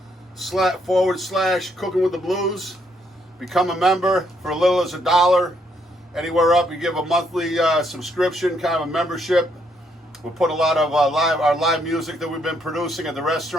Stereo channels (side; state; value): both; normal; correlation 0.73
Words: with the Blues. Become a member for as little as $1. Anywhere up, you give a monthly subscription, kind of a membership. We'll put a lot of our live music that we've been producing at the